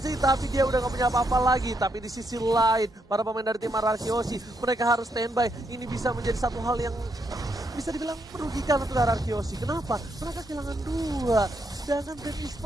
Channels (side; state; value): both; normal; correlation 0.78